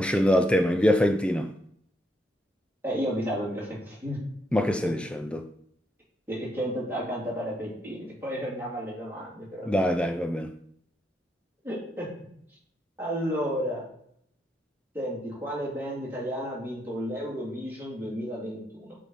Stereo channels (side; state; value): both; normal; correlation 0.77